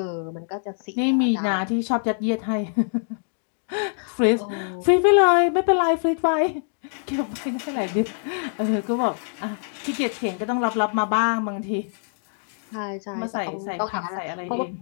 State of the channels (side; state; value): right; silent; digital silence